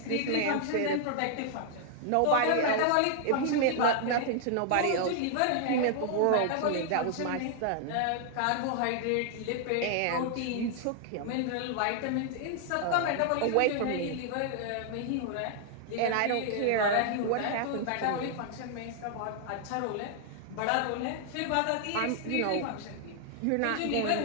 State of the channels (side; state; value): both; different; correlation 0.00